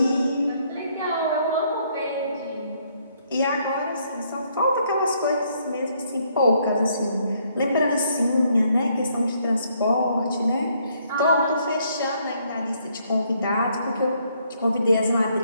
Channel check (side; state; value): both; inverted; correlation -0.69